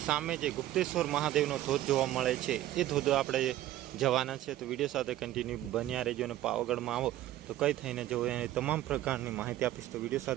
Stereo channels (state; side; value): quieter; left; 14.0 dB